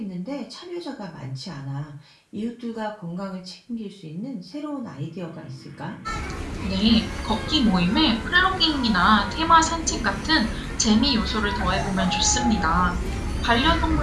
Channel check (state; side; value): identical; both; correlation 1.00